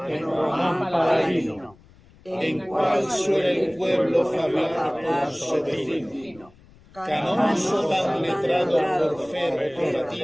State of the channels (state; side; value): noise; left; rumble, 26 dB below the sound